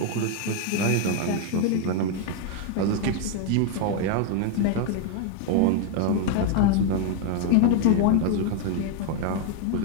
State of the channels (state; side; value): different; both; correlation 0.00